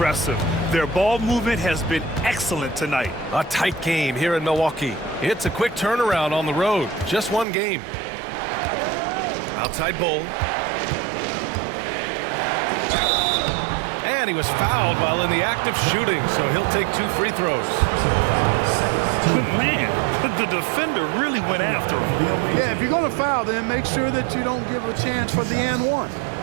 Their ball movement has been excellent tonight. A tight game here in Milwaukee. It's a quick turnaround on the road. Just one game. Outside Bull. And he was fouled while in the act of shooting, so he'll take 2 free throws. Man, the defender really went after him. Yeah, if you're going to foul, then make sure that you don't give a chance for the and one.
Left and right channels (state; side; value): drops out; left; at 7.5 s